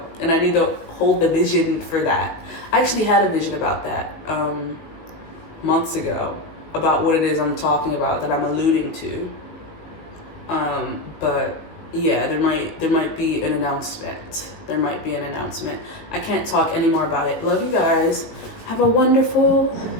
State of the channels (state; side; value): late; right; 18 ms